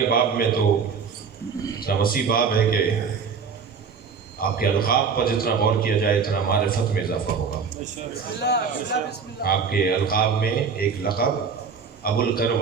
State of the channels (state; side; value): quieter; left; 5.9 dB